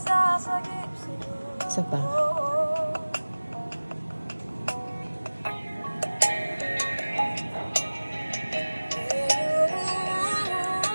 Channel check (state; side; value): inverted; both; correlation -1.00